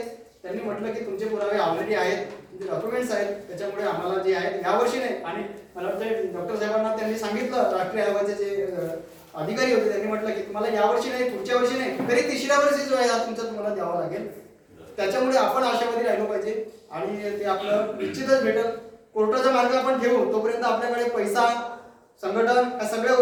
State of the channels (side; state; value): both; identical; correlation 1.00